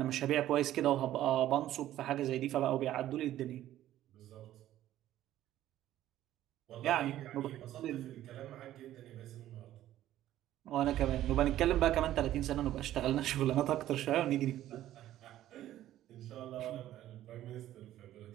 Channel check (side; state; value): left; quieter; 13.2 dB